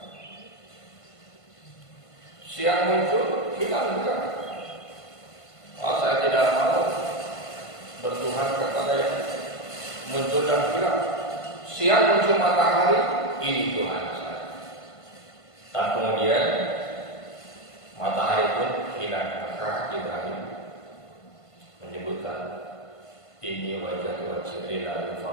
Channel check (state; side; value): late; right; 1.5 ms